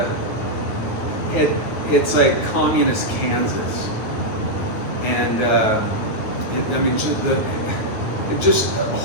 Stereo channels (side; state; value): right; late; 9.4 ms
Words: It's like communist Kansas, and just a